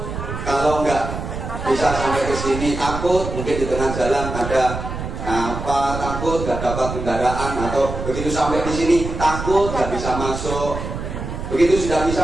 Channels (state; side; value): noise; right; rumble, 6 dB below the sound